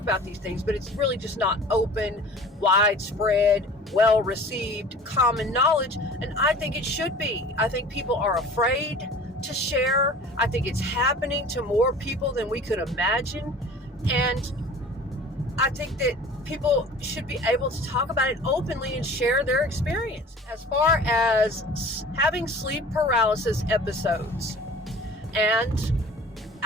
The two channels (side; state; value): both; normal; correlation 0.44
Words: these things, but it's really just not open, widespread, well-received, common knowledge, and I think it should be. I think people are afraid to share. I think it's happening to more people than we could imagine, and I think that people should be able to talk about it openly and share their experience. As far as having sleep paralysis episodes and